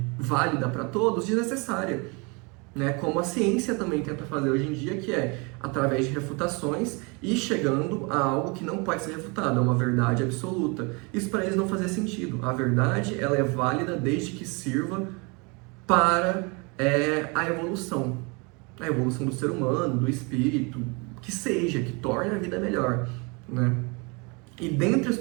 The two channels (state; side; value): quieter; left; 30.1 dB